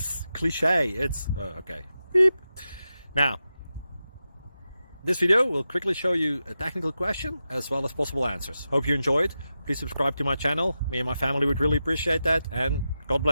cliche. It's okay. Beep. Now, this video will quickly show you a technical question as well as possible answers. Hope you enjoyed. Please subscribe to my channel. Me and my family would really appreciate that, and God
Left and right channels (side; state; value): both; inverted; correlation -0.90